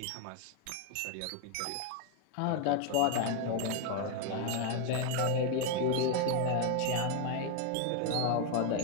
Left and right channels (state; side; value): different; both; correlation 0.01